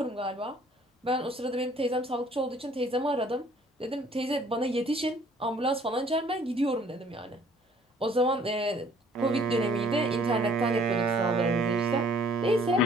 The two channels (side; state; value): both; normal; correlation 0.58